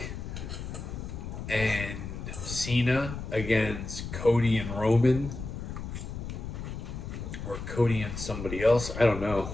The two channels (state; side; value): noise; left; rumble, 7 dB below the sound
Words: and Cena against Cody and Roman, or Cody and somebody else. I don't know.